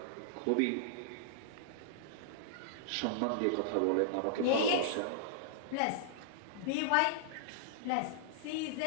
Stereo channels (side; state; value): both; different; correlation -0.02